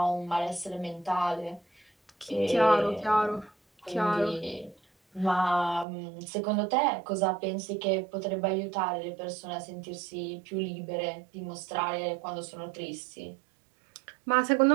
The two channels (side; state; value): left; drops out; at 5.9 s